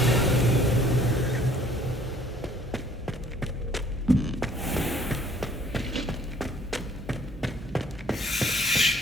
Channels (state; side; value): normal; both; correlation 0.57